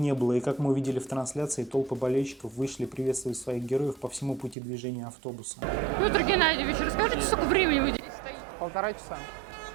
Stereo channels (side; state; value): left; drops out; at 4.5 s